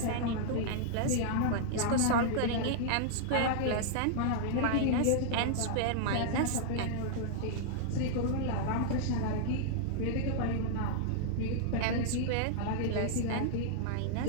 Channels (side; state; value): both; different; correlation -0.01